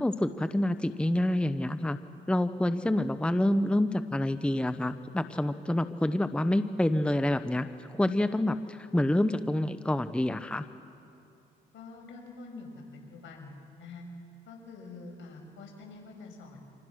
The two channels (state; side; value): normal; both; correlation 0.96